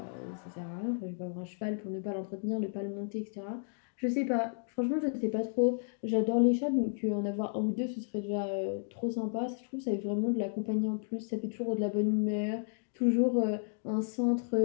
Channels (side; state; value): right; silent; digital silence